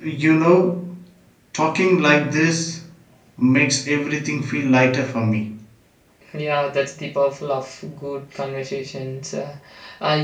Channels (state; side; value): identical; both; correlation 1.00